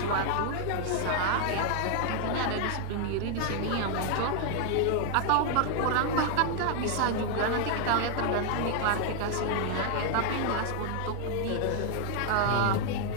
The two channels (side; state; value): both; different; correlation 0.00